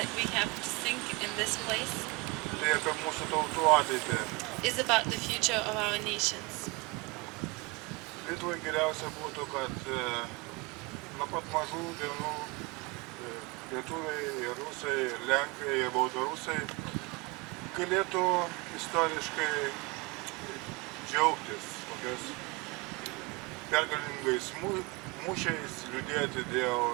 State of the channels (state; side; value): quieter; left; 26.1 dB